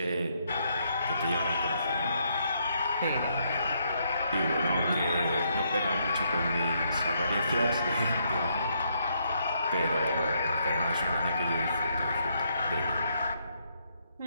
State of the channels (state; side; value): inverted; both; correlation -0.74